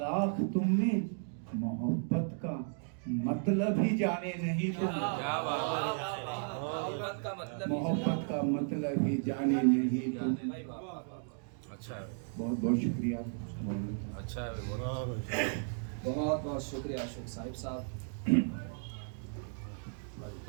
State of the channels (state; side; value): silent; left; 55 dB below the other